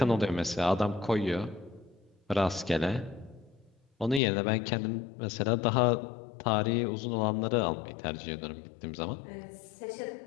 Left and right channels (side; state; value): right; drops out; at 4.2 s